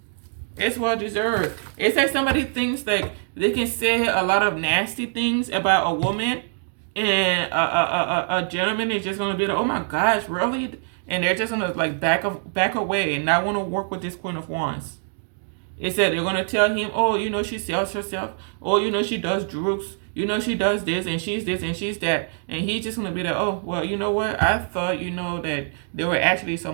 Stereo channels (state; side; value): silent; left; 63 dB below the other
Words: It's well deserved. It's like somebody thinks like they can say a lot of nasty things about a woman, and a gentleman is just gonna be like, oh my gosh, really? And they're just gonna like back away and not want to work with this Queen of Wands. It said they're gonna tell him, oh, you know, she sells herself. Oh, you know, she does drugs. You know, she does this and she's that. And he's just gonna be like, oh, well, you know what? I thought, you know, that they were actually